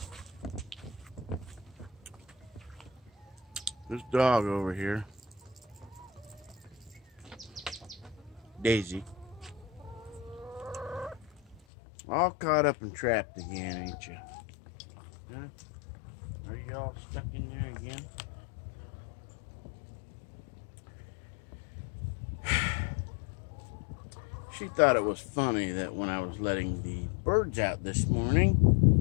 This dog over here, Daisy, all caught up and trapped again, ain't you? Huh? Are you all stuck in there again? She thought it was funny that when I was letting the birds out this morning,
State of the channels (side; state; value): right; drops out; at 11.6 s